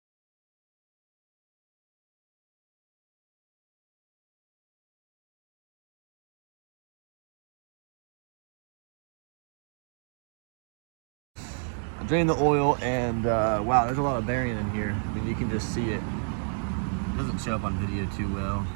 I drained the oil, and wow, there's a lot of bearing in here. I mean, you can just see it. It doesn't show up on video too well,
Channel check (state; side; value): silent; left; digital silence